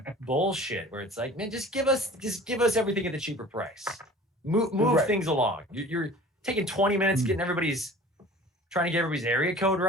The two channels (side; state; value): both; normal; correlation 0.44